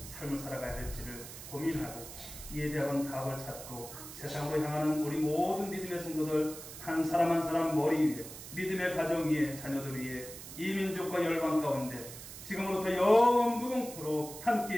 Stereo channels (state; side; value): noise; right; hiss, 12 dB below the sound